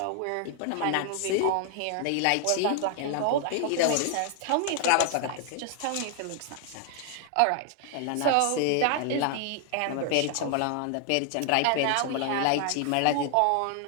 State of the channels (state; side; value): different; both; correlation 0.00